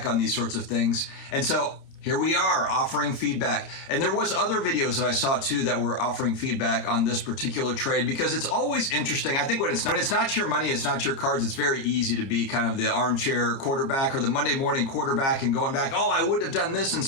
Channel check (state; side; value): late; right; 30 ms